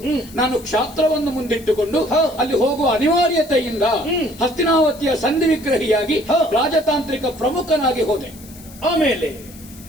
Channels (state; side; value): noise; left; hiss, 20 dB below the sound